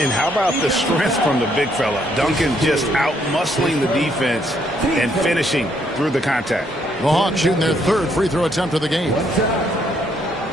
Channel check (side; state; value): both; normal; correlation 0.71